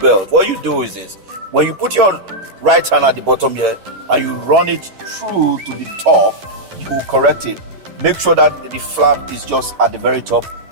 What you do is this: when you put your right hand at the bottom here and you run it through to the top, you will correct it. Make sure that the flap is just at the very top,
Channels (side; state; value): left; late; 11 ms